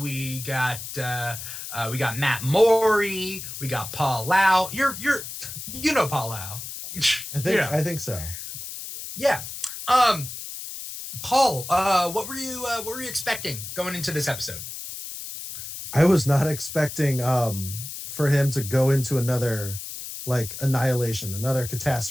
got Matt Morey. We got Paul Lau. You know Paul Lau. I think so. Yeah. Paul, what were you expecting going into this episode? I was not expecting for him to go into another annihilation, another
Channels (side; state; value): left; noise; hiss, 9 dB below the sound